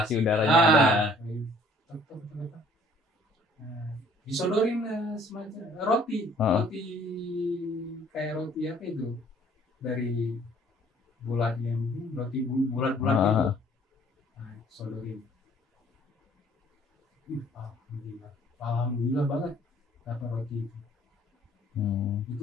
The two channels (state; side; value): normal; both; correlation 0.57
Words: udaranya ada. Disodorin semacam roti kayak roti apa itu dari bulat yang roti bulat-bulat itu. Sodorin. Alhamdulillah banget dapat roti itu.